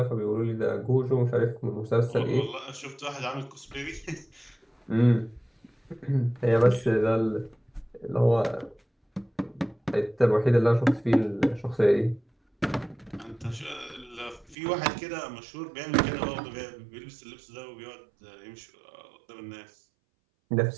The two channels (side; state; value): left; drops out; at 14.6 s